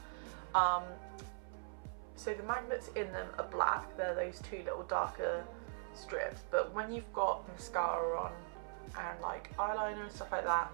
So the magnets in them are black, they're those 2 little darker strips, but when you've got mascara on and like eyeliner and stuff like that,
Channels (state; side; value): silent; left; 51 dB below the other